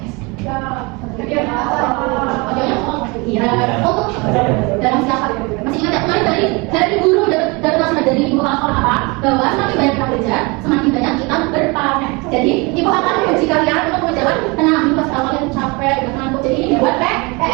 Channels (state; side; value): quieter; left; 27.4 dB